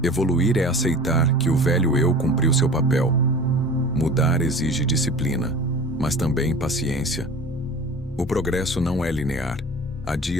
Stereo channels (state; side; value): normal; both; correlation 0.39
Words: Evoluir é aceitar que o velho eu cumpriu seu papel. Mudar exige disciplina, mas também paciência. O progresso não é linear. Há